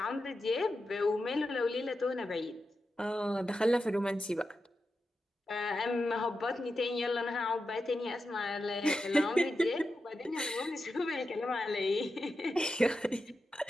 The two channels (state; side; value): normal; both; correlation 0.89